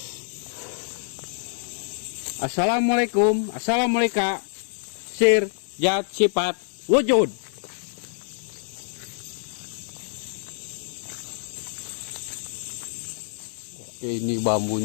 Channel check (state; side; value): silent; right; 61 dB below the other